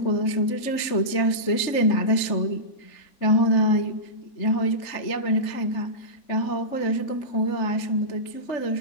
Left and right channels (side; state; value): right; late; 3.4 ms